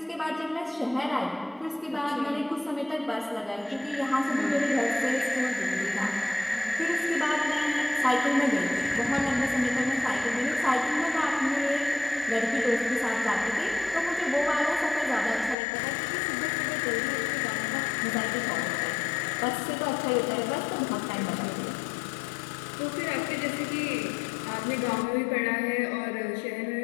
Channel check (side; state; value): right; drops out; at 15.6 s